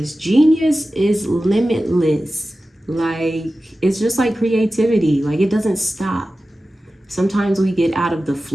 Genius is limitless. Like, it's just like creativity. Like, it doesn't stop. Sometimes we get out of the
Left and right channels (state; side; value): normal; both; correlation 0.95